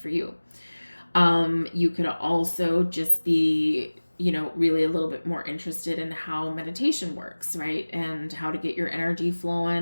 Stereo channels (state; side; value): inverted; both; correlation -1.00